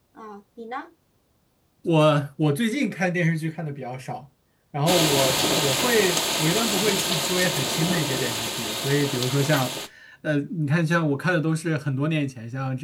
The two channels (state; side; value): identical; both; correlation 1.00